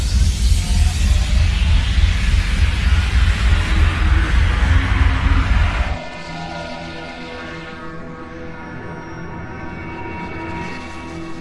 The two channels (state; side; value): identical; both; correlation 1.00